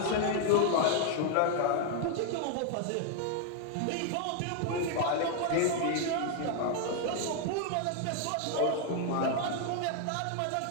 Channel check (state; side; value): different; both; correlation 0.00